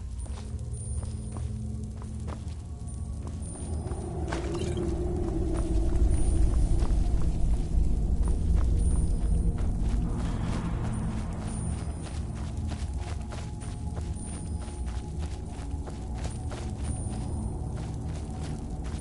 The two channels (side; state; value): both; identical; correlation 1.00